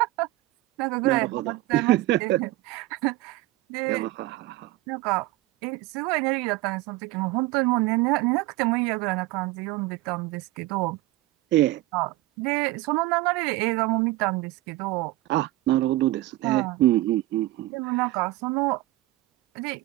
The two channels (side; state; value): left; quieter; 17.7 dB